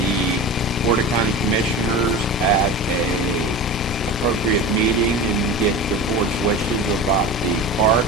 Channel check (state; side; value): normal; both; correlation 0.31